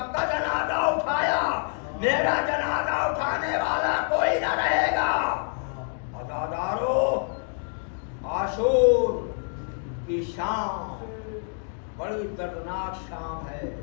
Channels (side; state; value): right; silent; 60 dB below the other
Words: کا جنازہ اٹھایا، میرا جنازہ اٹھانے والا کوئی نہ رہے گا. عزادارو، عاشور کی شام بڑی دردناک شام ہے.